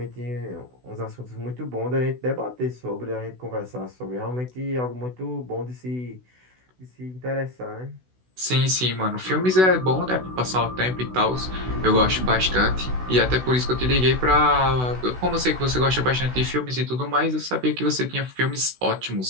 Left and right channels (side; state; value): left; late; 16 ms